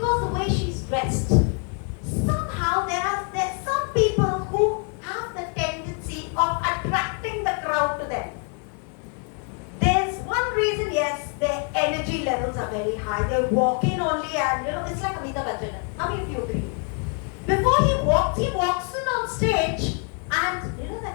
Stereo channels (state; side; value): quieter; right; 39.7 dB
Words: the way she's dressed. Somehow there's some people who have the tendency of attracting the crowd to them. There's one reason, yes, their energy levels are very high. They walk in only and, it's like Amitabh Bachchan. How many of you agree? Before he walks in on stage and,